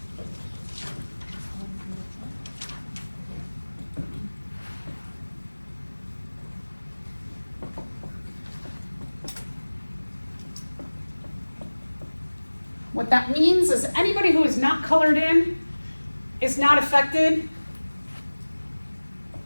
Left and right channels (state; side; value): inverted; both; correlation -1.00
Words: What that means is anybody who is not colored in is not affected